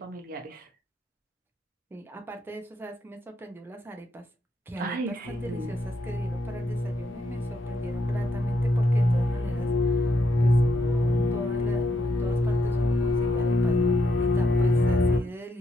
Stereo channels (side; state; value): both; normal; correlation 0.78